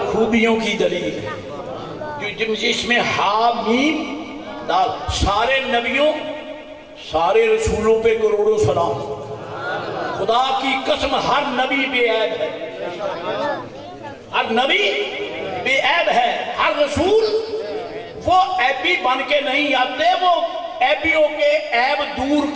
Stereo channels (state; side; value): identical; both; correlation 1.00